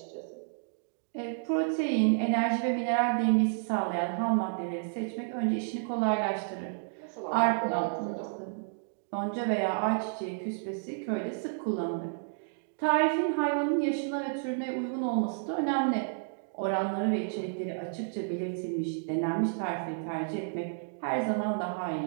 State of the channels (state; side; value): silent; left; digital silence